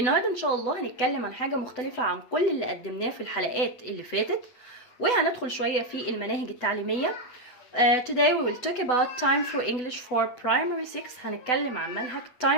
ان شاء الله هنتكلم عن حاجة مختلفة عن كل اللي قدمناه في الحلقات اللي فاتت، وهندخل شوية في المناهج التعليمية. Today we will talk about Time for English for Primary 6. هنتكلم عن منهج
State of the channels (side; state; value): right; late; 8.0 ms